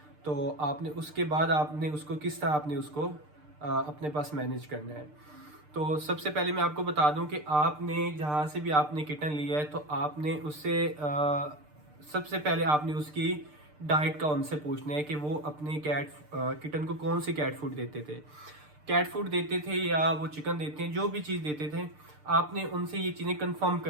तो आपने उसके बाद आपने उसको किस तरह आपने उसको अपने पास मैनेज करना है। तो सबसे पहले मैं आपको बता दूं कि आपने जहाँ से भी आपने किटन लिया है तो आपने उससे सबसे पहले आपने उसकी डाइट का उनसे पूछना है कि वो अपने किटन को कौन सी कैट फूड देते थे। कैट फूड देते थे या वो चिकन देते हैं, जो भी चीज़ देते थे, आपने उनसे ये चीज़ें कंफर्म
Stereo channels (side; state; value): left; late; 6.7 ms